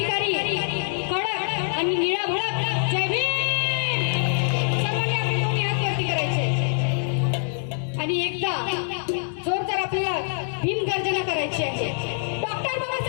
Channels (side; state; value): right; silent; digital silence